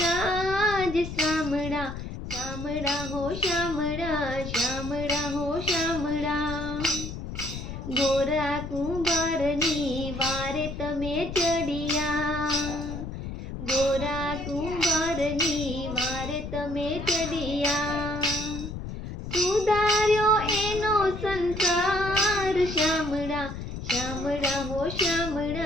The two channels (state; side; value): noise; left; rumble, 8 dB below the sound